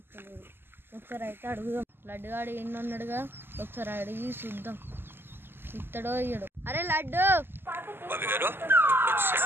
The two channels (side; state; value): left; late; 0.10 ms